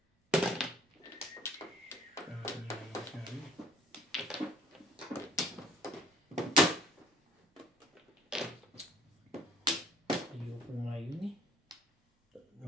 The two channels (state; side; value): normal; both; correlation 0.55